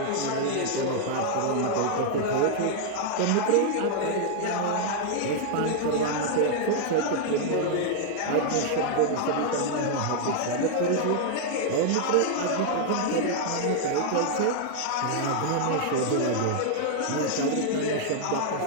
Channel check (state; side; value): different; both; correlation 0.00